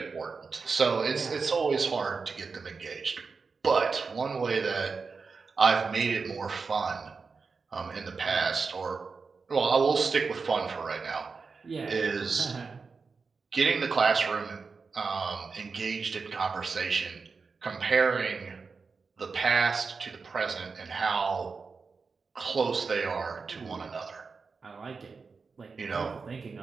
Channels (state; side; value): quieter; left; 4.8 dB